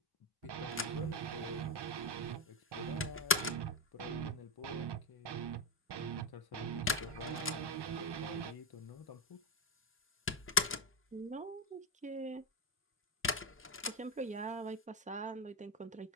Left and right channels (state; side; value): normal; both; correlation 0.08